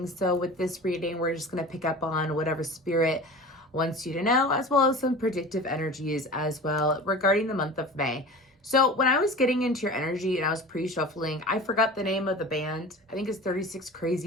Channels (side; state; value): both; normal; correlation 0.36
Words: So with this reading, we're just going to pick up on whatever spirit wants you to know, as well as some predictive energies as well regarding the month of May. So when I was getting into your energy and I was pre-shuffling, I forgot the name of the band. I think it's 36